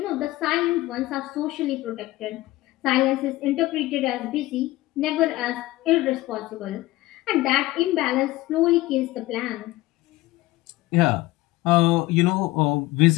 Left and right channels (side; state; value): right; quieter; 18.2 dB